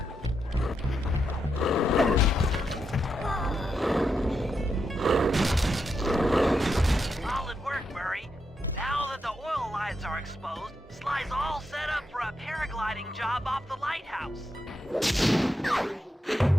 Solid work, Murray. Now that the oil lines are exposed, Sly's all set up for a paragliding job off the lighthouse.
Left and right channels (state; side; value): normal; both; correlation 0.83